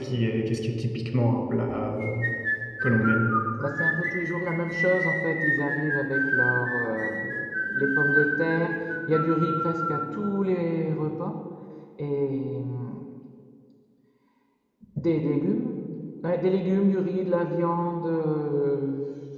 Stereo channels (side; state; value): both; identical; correlation 1.00